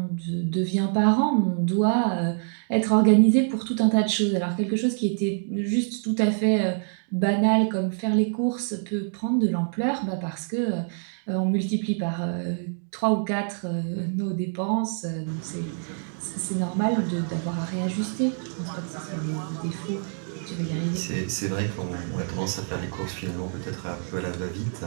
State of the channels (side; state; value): left; silent; 61 dB below the other